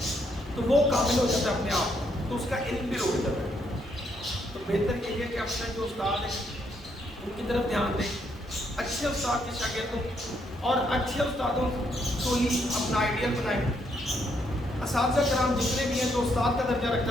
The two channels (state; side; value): normal; both; correlation 0.74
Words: تو وہ قابل ہو جاتا ہے اپنے آپ, تو اس کا علم بھی رک جاتا ہے. تو بہتر یہ ہے کہ اپنے جو استاد ہیں ان کی طرف دھیان دیں, اچھے استاد کے شاگرد ہوں اور اچھے استادوں کو ہی اپنا آئیڈیل بنائیں. اساتذہ کرام جتنے بھی ہیں جو استاد کا درجہ رکھتا